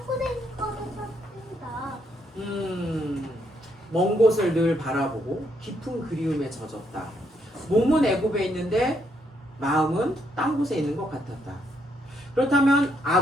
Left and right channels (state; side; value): normal; both; correlation 0.74